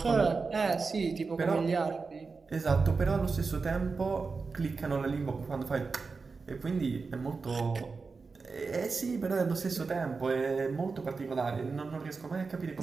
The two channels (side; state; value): left; quieter; 4.5 dB